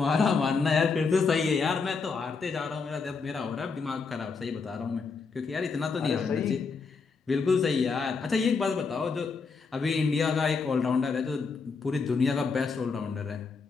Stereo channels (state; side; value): quieter; right; 4.9 dB